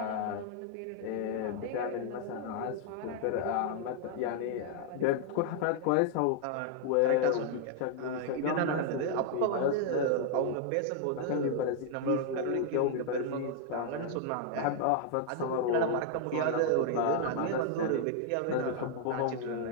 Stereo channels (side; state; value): both; different; correlation 0.00